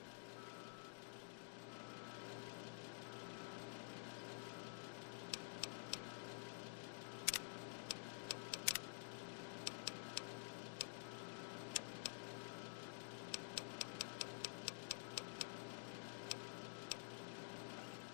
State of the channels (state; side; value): silent; right; digital silence